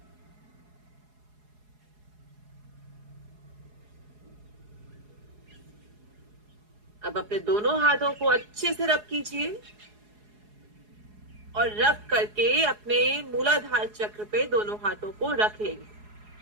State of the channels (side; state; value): left; late; 4.8 ms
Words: अब अपने दोनों हाथों को अच्छे से रब कीजिए। और रब करके अपने मूलाधार चक्र पे दोनों हाथों को रख लेंगे।